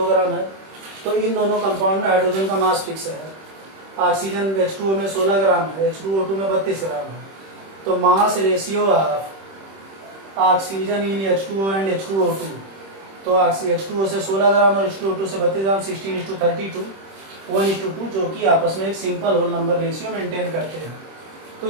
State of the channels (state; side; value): late; left; 26 ms